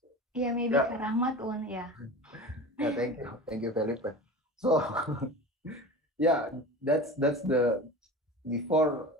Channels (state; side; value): normal; both; correlation 0.33